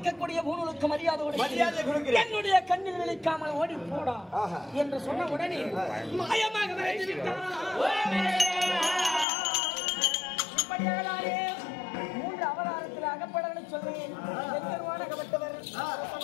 பூணுக்கு மரியாதை என்னுடைய கண்ணில் விழிக்காமல் ஓடி போடா என்று சொன்ன உடனே மாயமாக விரைந்து விட்டாரா? 3 அவதாரத்தில் அகப்படலை சொல்றேன்.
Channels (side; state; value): right; drops out; at 9.2 s